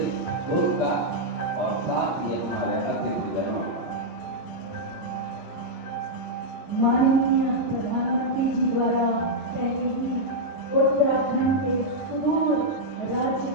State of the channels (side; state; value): both; normal; correlation -0.04